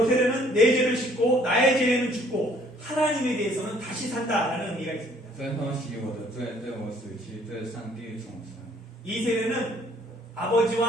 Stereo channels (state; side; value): normal; both; correlation 0.60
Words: 세례는 내 죄를 씻고 나의 죄는 죽고 하나님에 대해서는 다시 산다라는 의미가 있습니다. 最后洗我的罪，对我死去，对上帝重生。 이 세례는